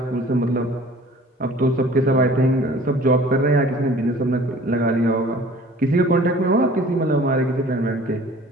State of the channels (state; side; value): normal; both; correlation 0.48